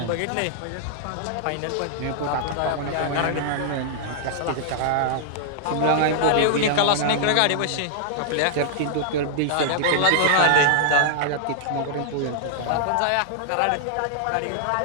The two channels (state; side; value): different; both; correlation -0.01